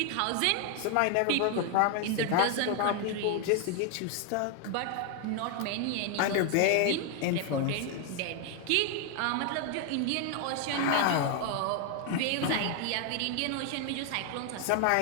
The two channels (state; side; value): different; both; correlation 0.00